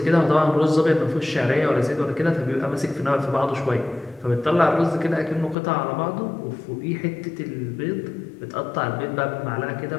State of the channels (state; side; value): drops out; right; at 5.6 s